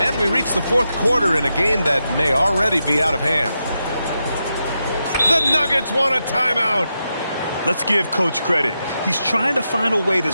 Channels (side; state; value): both; inverted; correlation -0.87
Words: we reach the fourth quarter in a game that may already be out of hand. The Nuggets want a timeout. Let's give Coach credit. He's trying to find a way to